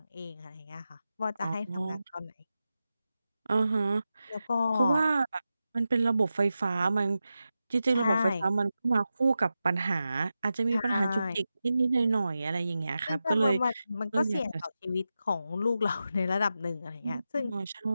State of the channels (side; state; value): both; inverted; correlation -0.91